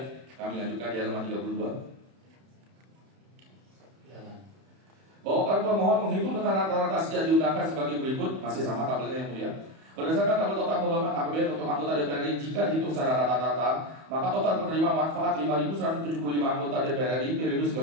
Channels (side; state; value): left; late; 31 ms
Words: Kami lanjutkan di halaman 32. Bahwa para pemohon menghitung dengan rata-rata sejak diundangkan sebagai berikut, masih sama tabelnya yang mulia. Berdasarkan tabel total pembayaran APBN untuk anggota DPR RI, jika dihitung secara rata-rata, maka total penerima manfaat 5.175 anggota DPR RI periode